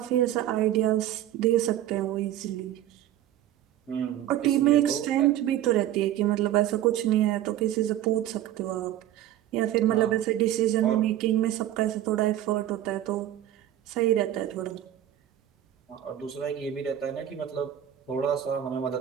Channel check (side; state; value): left; quieter; 12.3 dB